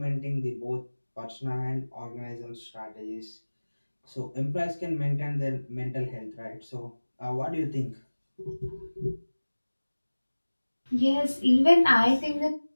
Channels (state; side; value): inverted; both; correlation -1.00